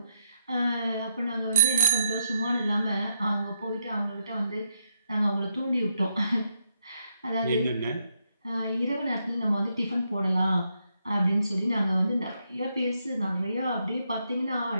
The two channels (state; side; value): inverted; both; correlation -0.78